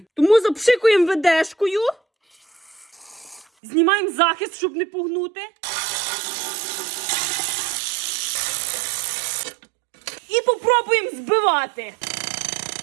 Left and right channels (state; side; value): drops out; left; at 3.5 s